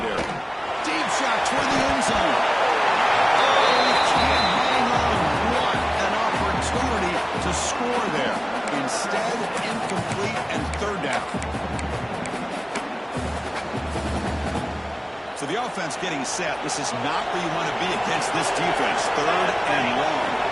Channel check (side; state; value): both; identical; correlation 1.00